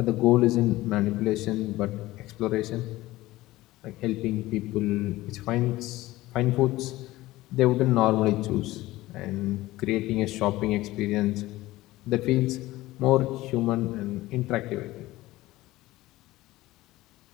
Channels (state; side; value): quieter; right; 17.7 dB